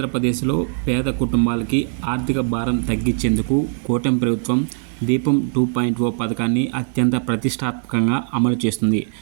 పేద కుటుంబాలకి ఆర్థిక భారం తగ్గించేందుకు కూటమి ప్రభుత్వం దీపం 2.0 పథకాన్ని అత్యంత ప్రతిష్టాత్మకంగా అమలు చేస్తుంది.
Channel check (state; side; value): silent; left; 64 dB below the other